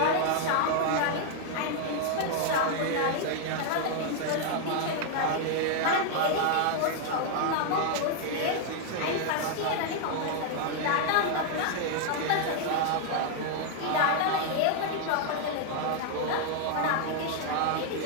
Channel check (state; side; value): different; both; correlation 0.00